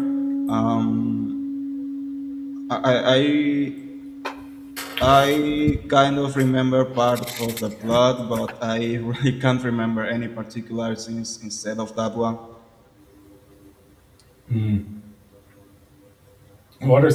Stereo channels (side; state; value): both; identical; correlation 1.00